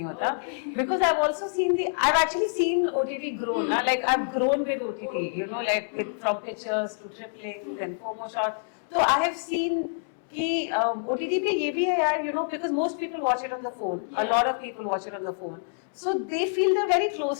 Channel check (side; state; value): right; silent; 60 dB below the other